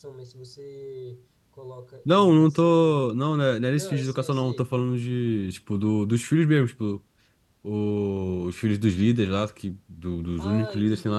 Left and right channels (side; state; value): both; identical; correlation 1.00